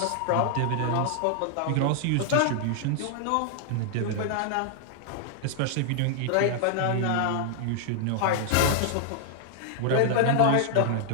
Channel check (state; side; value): different; both; correlation 0.00